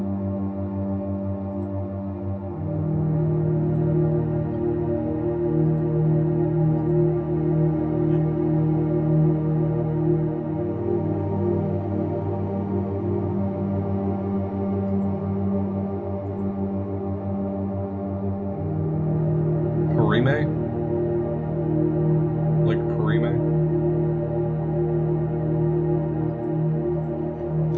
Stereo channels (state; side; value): identical; both; correlation 1.00